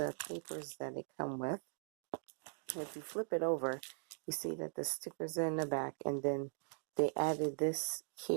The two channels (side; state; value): left; silent; digital silence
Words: papers that they come with. If you flip it over, you see that the stickers are in the back, and then they added this